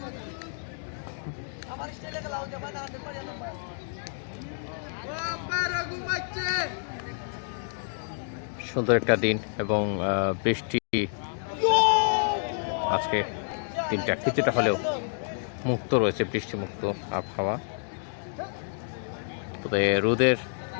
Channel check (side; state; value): right; silent; digital silence